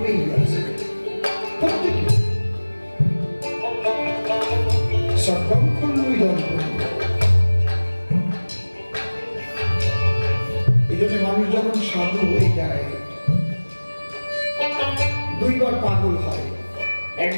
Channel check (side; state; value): both; inverted; correlation -1.00